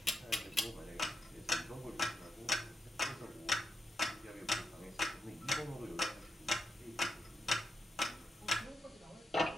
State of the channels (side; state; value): both; normal; correlation 0.86